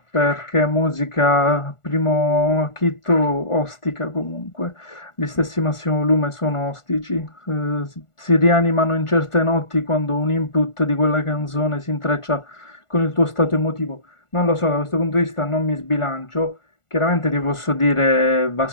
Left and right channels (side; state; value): right; late; 1.4 ms